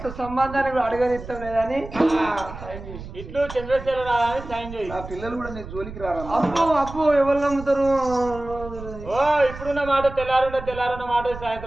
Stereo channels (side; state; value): right; noise; rumble, 12 dB below the sound